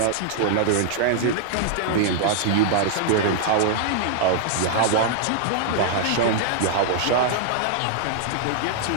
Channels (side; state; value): both; different; correlation -0.01